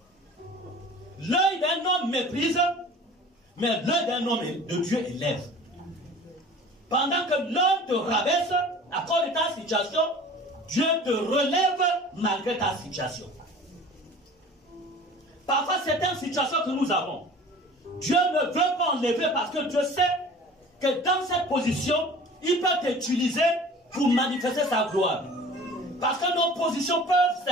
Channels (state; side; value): normal; both; correlation 0.44